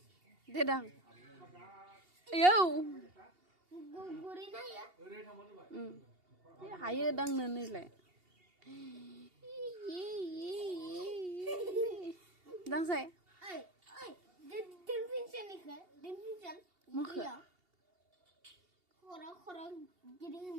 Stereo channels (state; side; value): late; left; 2.8 ms